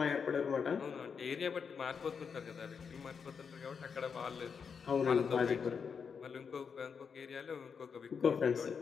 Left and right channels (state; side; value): quieter; right; 6.2 dB